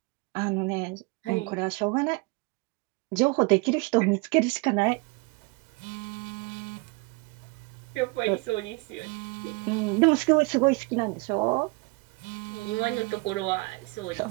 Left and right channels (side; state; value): left; quieter; 27.6 dB